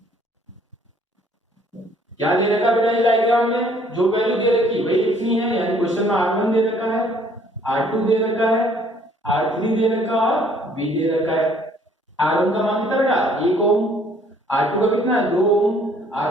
क्या दे रखा बेटा इस डायग्राम में, जो वैल्यू दे रखी वही लिखनी है. यानी क्वेश्चन में R1 दे रखा है, R2 दे रखा है, R3 दे रखा और B दे रखा है. R1 का मान कितना बेटा, 1 ओम. R2 का कितना है, 2 ओम.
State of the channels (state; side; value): normal; both; correlation 0.60